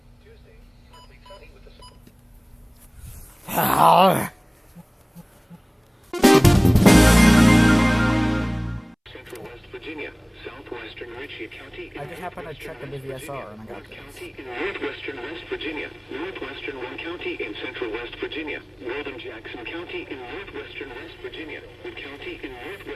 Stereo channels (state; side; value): identical; both; correlation 1.00